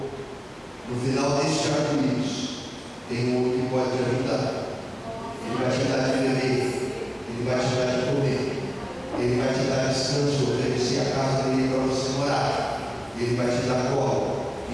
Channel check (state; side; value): identical; both; correlation 1.00